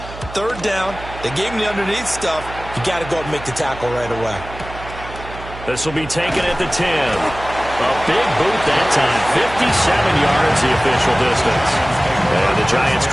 3rd down, they gave him the underneath stuff. You got to go up and make the tackle right away. This will be taken at the 10. A big boot that time, 57 yards the official distance. And the Giants'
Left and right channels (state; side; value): noise; right; hum, 14 dB below the sound